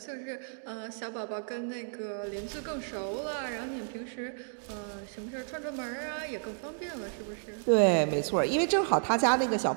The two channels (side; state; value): left; silent; 56 dB below the other